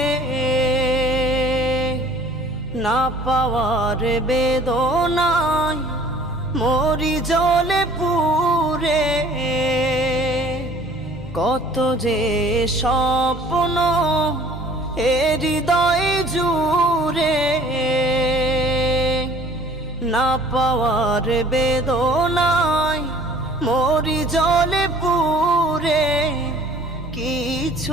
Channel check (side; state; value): both; normal; correlation 0.52